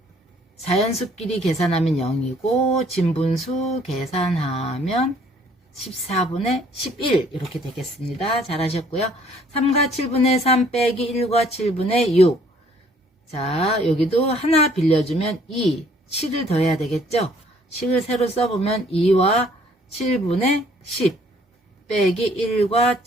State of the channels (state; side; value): normal; both; correlation 0.61